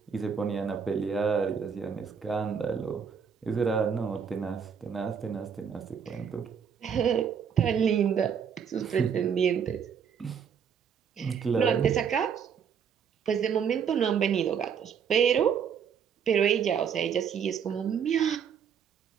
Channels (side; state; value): left; quieter; 7.2 dB